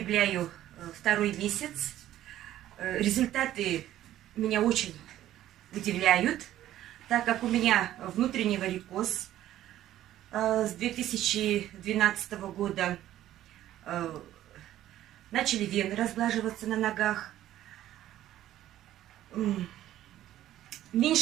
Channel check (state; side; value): quieter; left; 13.1 dB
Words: второй месяц. Результаты меня очень удивляют, так как у меня внутренний варикоз. С 2012 года начали вены разглаживаться на ногах.